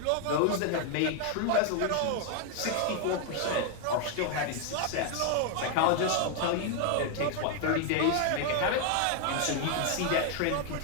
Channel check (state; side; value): different; both; correlation 0.00